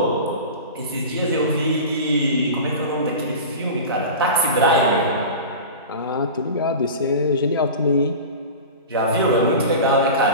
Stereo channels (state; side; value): inverted; both; correlation -0.31